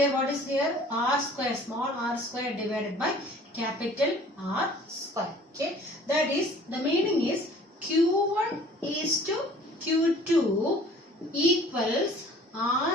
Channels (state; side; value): normal; both; correlation 0.50